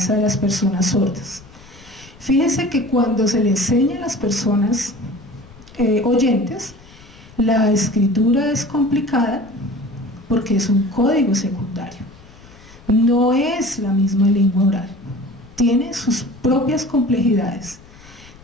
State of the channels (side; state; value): left; noise; rumble, 23 dB below the sound